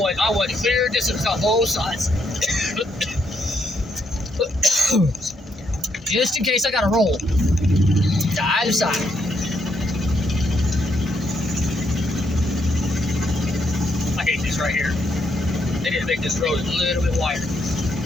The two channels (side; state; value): both; normal; correlation 0.76